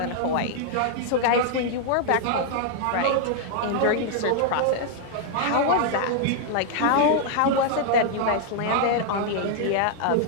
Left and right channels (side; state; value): both; different; correlation 0.00